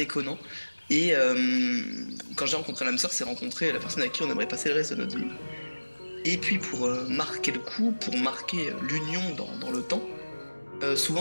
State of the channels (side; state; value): both; inverted; correlation -1.00